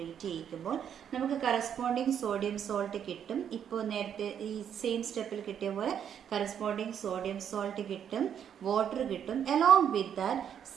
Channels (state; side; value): quieter; left; 8.7 dB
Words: ചെയ്യിക്കുമ്പോൾ നമുക്ക് കറസ്പോണ്ടിങ് സോഡിയം സോൾട്ട് കിട്ടും. ഇപ്പോൾ നേരത്തെ ഈ സെയിം സ്റ്റെപ്പിൽ കിട്ടിയ പോലെ കറസ്പോണ്ടിങ് സോഡിയം സോൾട്ട് കിട്ടും, വാട്ടർ കിട്ടും. Along with that